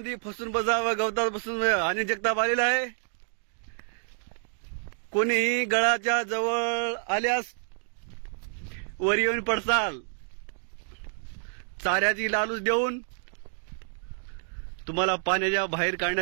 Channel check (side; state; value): left; silent; digital silence